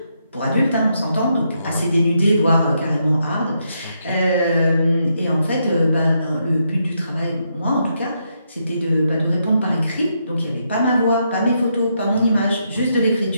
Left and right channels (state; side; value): inverted; both; correlation -0.79